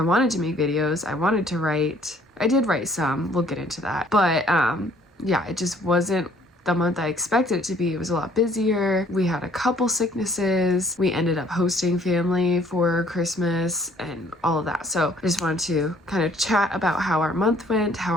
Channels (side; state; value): both; normal; correlation 0.59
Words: wanted to make videos. I wanted to write. I did write some, we'll get into that, but yeah, it just wasn't the month I expected it to be. It was a lot busier. We had a couple sicknesses. We ended up hosting family for Christmas and all of that. So I just wanted to kind of chat about how our month went, how